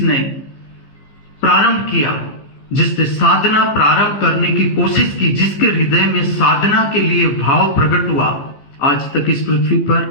प्रारंभ किया, जिसने साधना प्रारंभ करने की कोशिश की, जिसके हृदय में साधना के लिए भाव प्रकट हुआ, आज तक इस पृथ्वी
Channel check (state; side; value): late; right; 15 ms